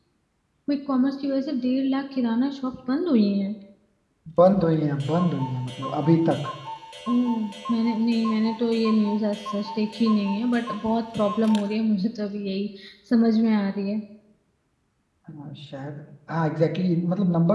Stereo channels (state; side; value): identical; both; correlation 1.00